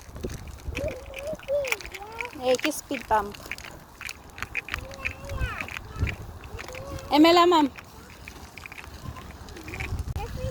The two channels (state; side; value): identical; both; correlation 1.00